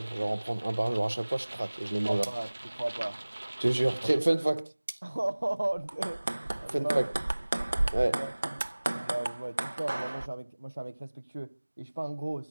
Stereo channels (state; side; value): inverted; both; correlation -1.00